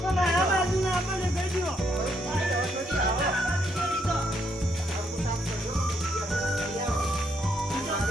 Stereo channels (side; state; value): both; normal; correlation 0.74